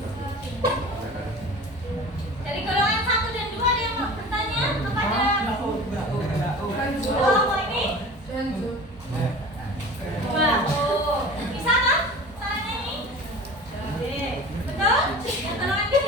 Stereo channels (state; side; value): normal; both; correlation 0.38